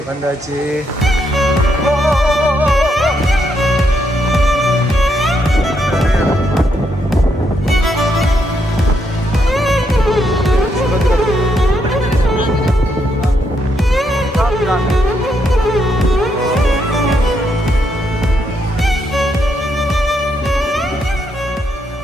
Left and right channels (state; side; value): normal; both; correlation 0.77